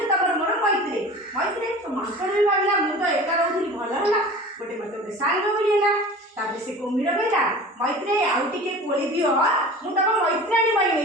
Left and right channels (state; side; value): normal; both; correlation 0.39